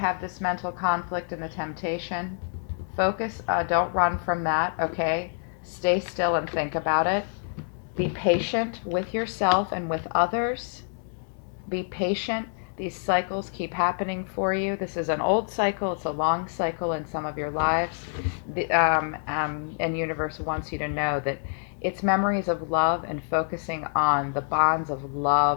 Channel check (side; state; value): right; silent; 60 dB below the other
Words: this mental conflict and the temptation. Focus, don't run from that, okay? Stay still and think about it. Be patient with yourself and with others. Be patient. These cycles keep happening for you. This is an old cycle. It's a long cycle in some of your lives. And universe wants you to know that it's memories of love and focusing on the bonds of